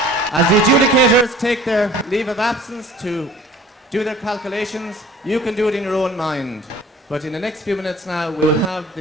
As the adjudicators take their leave of absence to do their calculations, you can do it in your own mind. But in the next few minutes now, we'll have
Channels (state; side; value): normal; both; correlation 0.48